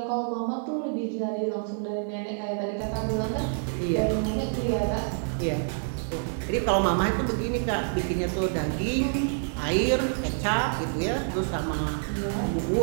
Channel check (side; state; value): left; silent; digital silence